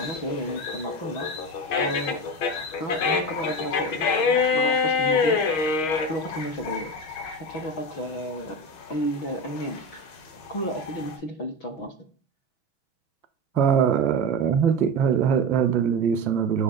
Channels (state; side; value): late; right; 6.3 ms